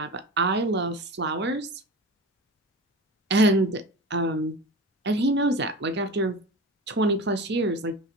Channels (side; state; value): both; normal; correlation 0.31